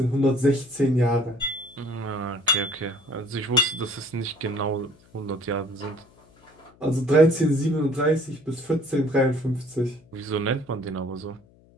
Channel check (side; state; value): left; noise; hum, 29 dB below the sound